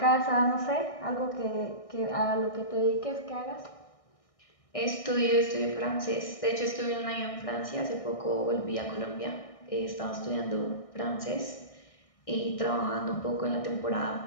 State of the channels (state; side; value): late; right; 1.6 ms